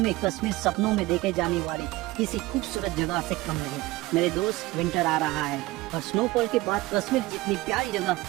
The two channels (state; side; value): quieter; left; 19.6 dB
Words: कश्मीर सपनों में देखे जाने वाली किसी खूबसूरत जगह से कम नहीं। मेरे दोस्त, विंटर आ रहा है और स्नोफॉल के बाद कश्मीर जितनी प्यारी जगह